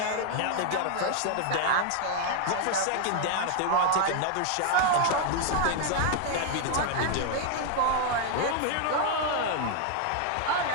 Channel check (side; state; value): both; different; correlation 0.00